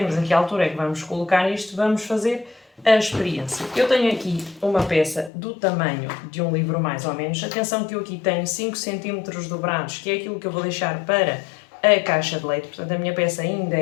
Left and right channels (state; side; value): drops out; right; at 5.3 s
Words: a que altura é que vamos colocar isto, vamos fazer a experiência. Eu tenho aqui uma peça do tamanho de um livro mais ou menos, atenção que eu aqui tenho 5 cm dobrados, que é aquilo que eu vou deixar para a caixa de leite, portanto a minha peça ainda